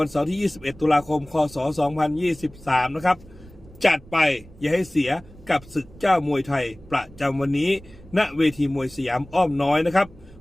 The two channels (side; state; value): right; noise; rumble, 21 dB below the sound